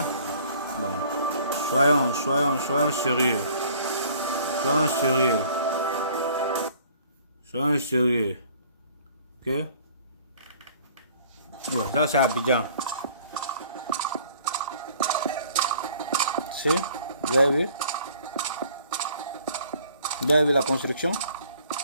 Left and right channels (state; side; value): inverted; both; correlation -0.54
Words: Bon. Soyons sérieux. Soyons sérieux. Soyons sérieux. Ok? Ouais, ça c'est Abidjan. Si? Vous avez vu? Vous avez vu la construction?